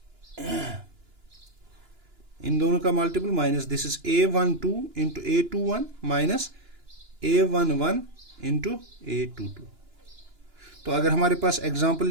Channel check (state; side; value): late; left; 2.9 ms